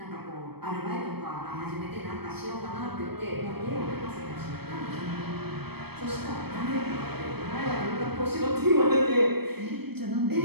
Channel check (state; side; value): late; left; 0.97 ms